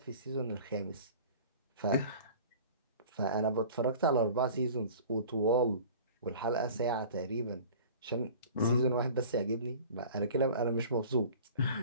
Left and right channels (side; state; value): both; inverted; correlation -0.43